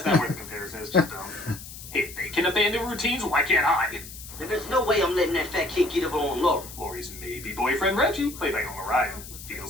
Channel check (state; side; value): noise; left; hiss, 14 dB below the sound